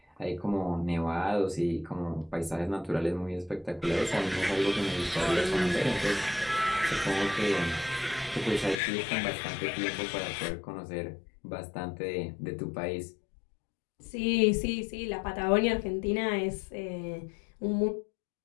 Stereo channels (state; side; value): drops out; right; at 8.8 s